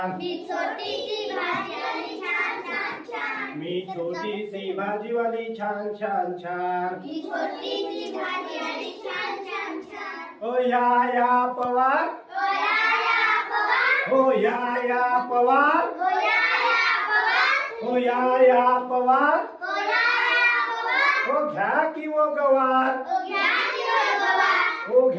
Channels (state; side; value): identical; both; correlation 1.00